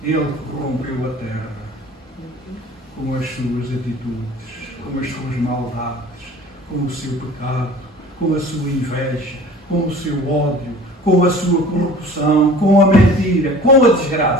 ele corrompeu a terra com as suas atitudes, com as suas maldades, com o seu pecado, com a sua inveja, com o seu ódio, com a sua corrupção, com a mentira, com a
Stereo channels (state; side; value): normal; both; correlation 0.44